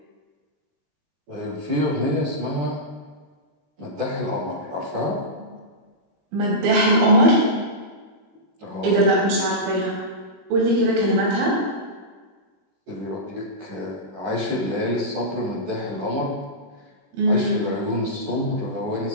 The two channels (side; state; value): left; late; 21 ms